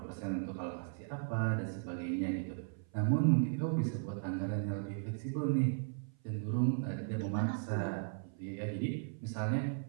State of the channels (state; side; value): silent; left; 53 dB below the other